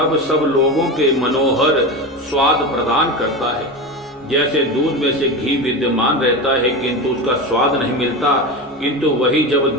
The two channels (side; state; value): both; normal; correlation 0.23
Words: सब लोगों के मनोहर स्वाद प्रदान करता है। जैसे दूध में से घी विद्यमान रहता है किंतु उसका स्वाद नहीं मिलता, किंतु वही जब